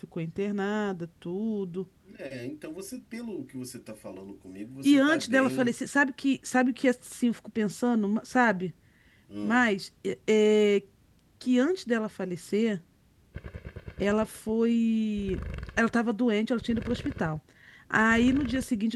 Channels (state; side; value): identical; both; correlation 1.00